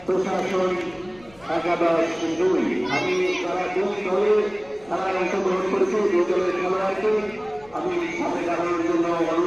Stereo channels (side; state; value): left; noise; rumble, 26 dB below the sound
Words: প্রশাসন একাদশ 2 আমি তারা 2 দলে খেলায় অংশগ্রহণ করেছি 2 দলের খেলোয়াড়কে আমি সাথে জানানোর জন্য